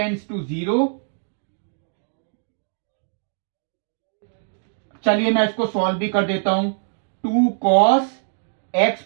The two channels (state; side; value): silent; left; digital silence